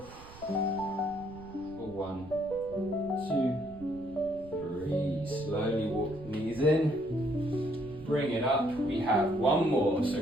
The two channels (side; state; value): right; noise; rumble, 19 dB below the sound